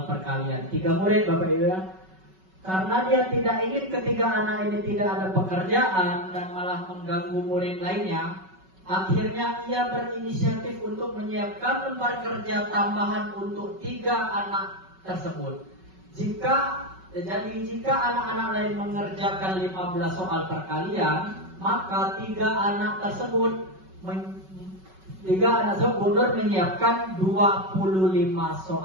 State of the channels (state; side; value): late; left; 5.3 ms